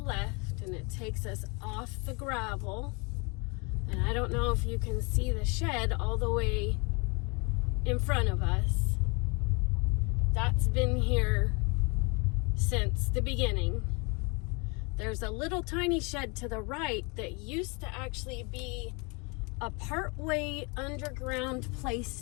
left, and it takes us off the gravel. And I don't know if you can see the shed all the way in front of us. That's been here since the beginning. There's a little tiny shed to the right that used to actually be a partway underground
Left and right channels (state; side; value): quieter; right; 30.9 dB